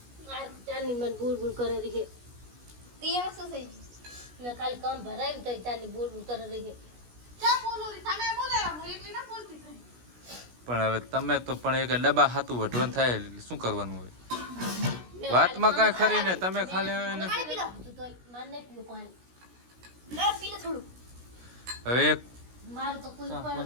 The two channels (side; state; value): left; late; 16 ms